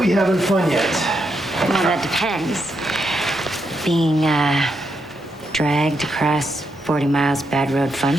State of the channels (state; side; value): normal; both; correlation 0.81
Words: having fun yet? Well, that depends. Being, dragged across 40 miles bad road fun?